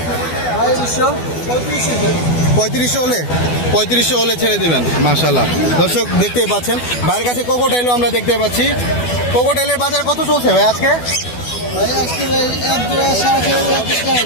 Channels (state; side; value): late; right; 12 ms